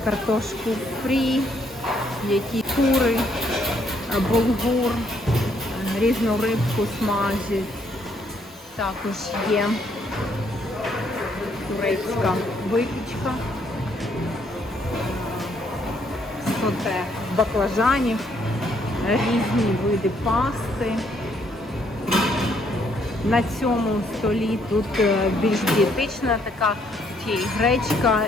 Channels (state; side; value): normal; both; correlation 0.70